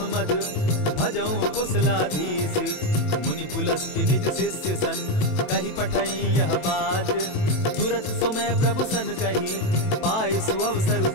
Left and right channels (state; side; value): late; right; 27 ms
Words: मद, भजऊं कुशलाधीश। मुनि पुलस्ति निज शिष्य सन, कही पठई यह बात। तुरत सो मैं प्रभु सन कही, पाय सुअवसर